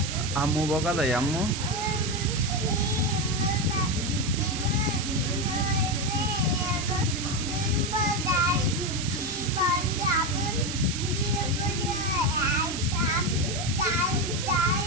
আম্মু বকা দেয়? আম্মু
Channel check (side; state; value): right; noise; hiss, 5 dB below the sound